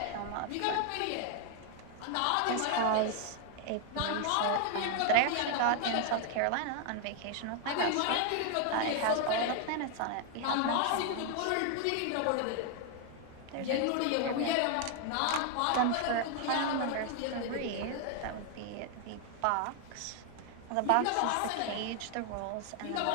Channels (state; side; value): different; both; correlation 0.00